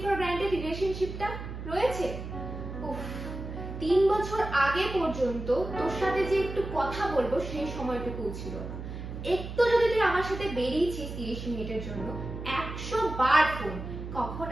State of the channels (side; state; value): right; noise; hum, 8 dB below the sound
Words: ফর গ্রান্টেড রিলেশনশিপটা রয়েছে? উফ, 3 বছর আগে পর্যন্ত তোর সাথে যে একটু কথা বলবো সেই সময়টুকু ছিল না। একটু যদি তুই আমার সাথে বেরিয়েছিস 30 মিনিটের জন্য, 100 বার ফোন, কখন